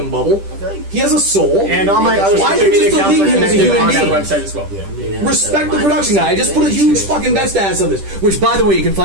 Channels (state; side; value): late; left; 10 ms